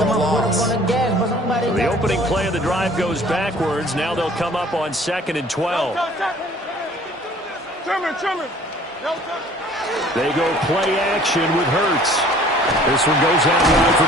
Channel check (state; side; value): normal; both; correlation 0.52